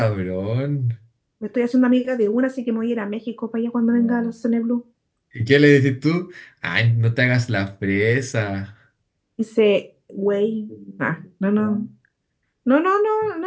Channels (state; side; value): identical; both; correlation 1.00